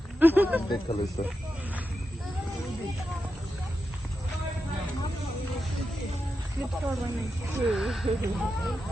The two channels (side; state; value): both; normal; correlation 0.88